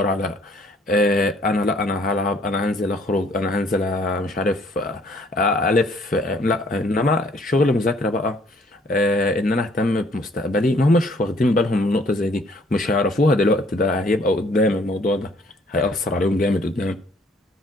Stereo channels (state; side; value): normal; both; correlation 0.62